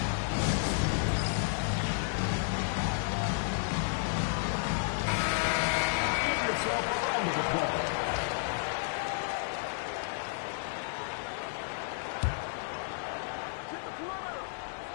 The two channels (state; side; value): silent; right; digital silence